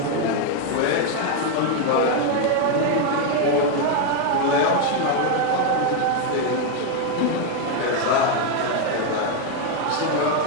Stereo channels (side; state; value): both; different; correlation 0.01